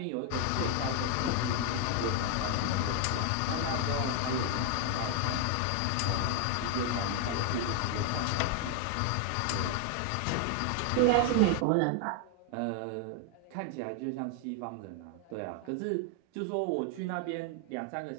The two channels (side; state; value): both; different; correlation 0.00